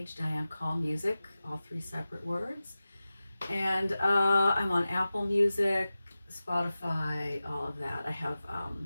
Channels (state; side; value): inverted; both; correlation -0.95